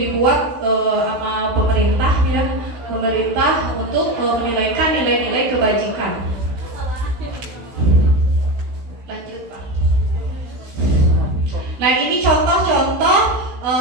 sama pemerintah untuk menilaikan nilai-nilai kebajikan. Nah, ini contoh-contoh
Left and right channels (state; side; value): late; left; 16 ms